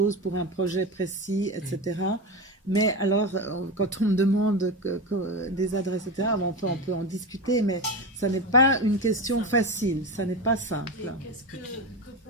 pour un projet précis, etc. Mais alors, quand on me demande des adresses, etc., on peut en discuter, mais ça n'est pas une question facile, ça n'est pas simple. Et qu'est-ce que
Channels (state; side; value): normal; both; correlation 0.20